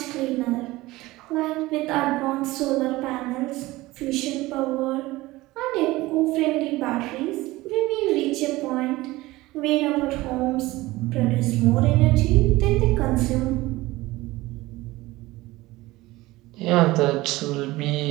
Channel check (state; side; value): quieter; left; 19.1 dB